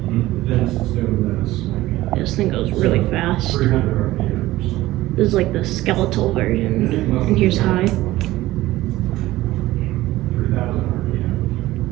This thing goes really fast. This is like the skeletal version, and here's high.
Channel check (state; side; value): quieter; left; 16.8 dB